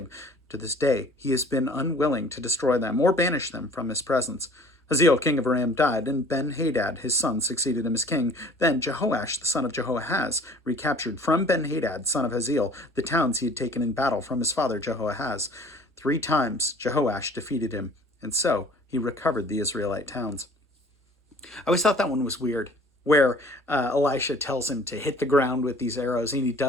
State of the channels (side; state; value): both; normal; correlation 0.50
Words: To this day, he has been unwilling to destroy them or banish them from his presence. Hazael, king of Aram, died, and Ben-Hadad, his son, succeeded him as king. Then Jehoash, the son of Jehoahaz, recaptured from Ben-Hadad, son of Hazael, the towns he had taken in battle from his father Jehoahaz. 3 times Jehoash defeated him, and so he recovered the Israelite towns. I always thought that one was weird, where Elisha tells him to hit the ground with these arrows, and he